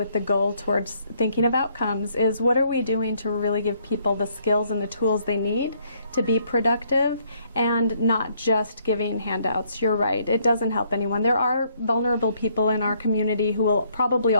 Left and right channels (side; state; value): both; inverted; correlation -0.69